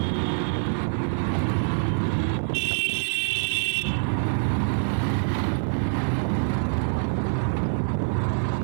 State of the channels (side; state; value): left; silent; 57 dB below the other